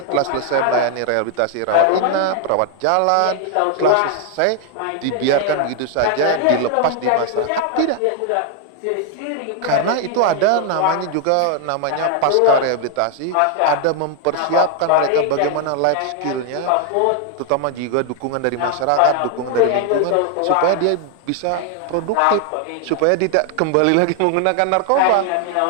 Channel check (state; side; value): different; both; correlation 0.00